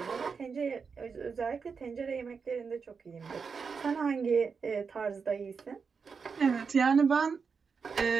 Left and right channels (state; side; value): quieter; left; 5.5 dB